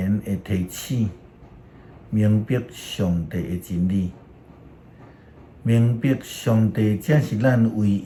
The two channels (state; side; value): identical; both; correlation 1.00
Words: 的提醒，明白上帝的真理，明白上帝才是咱唯